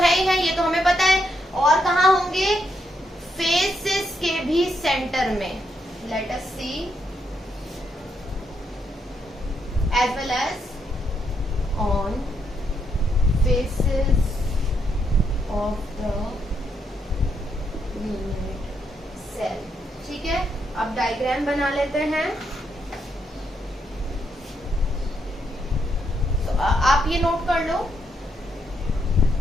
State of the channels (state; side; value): normal; both; correlation 0.78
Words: है ही है, ये तो हमें पता है. और कहाँ होंगे? फेसेस के भी सेंटर में. Let us C. as well as on faces of the unit cell. ठीक है, अब डायग्राम बना लेते हैं. तो आप ये नोट कर लो.